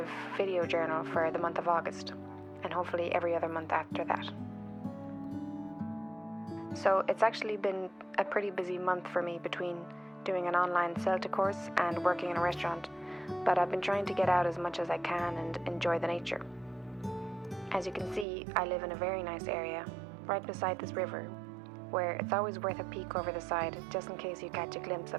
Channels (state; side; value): drops out; left; at 18.2 s